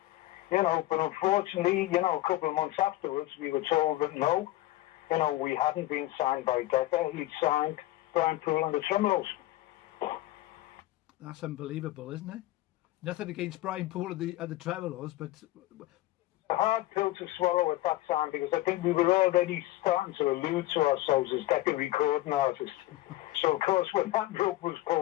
But unfortunately, a couple of months afterwards, we were told that no, we hadn't been signed by Decca. He'd signed Brian Poole and the Tremolos. That's unbelievable, isn't it? Nothing against Brian Poole and the Tremolos, but a hard pill to swallow at that time, because I think we were already starting to allude to ourselves as Decca recording artists. So, of course, when that rope was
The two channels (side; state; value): right; quieter; 16.6 dB